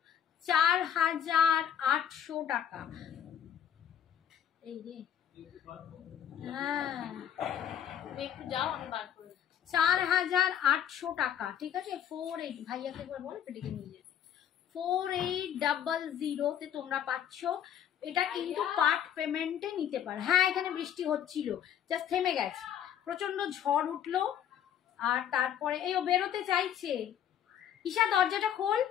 4800 টাকা। এই রে হ্যাঁ, একটু যাও আমি বার করে 4800 টাকা। ঠিক আছে, 48 ভাইয়াকে একবার বল পেটিকে নিয়ে যেতে। 4800 তে তোমরা পাচ্ছ। এটা কিন্তু পার্ট পেমেন্টে নিতে পারো। হ্যাঁ এখানে বৃষ্টি হচ্ছিল, জাস্ট থেমে গেছে, প্রচন্ড ঝড় উঠলো। আর তারপরে এই ও বেরোতে চাইছে, ঈশা দরজাটা খোল,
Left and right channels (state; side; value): quieter; right; 9.5 dB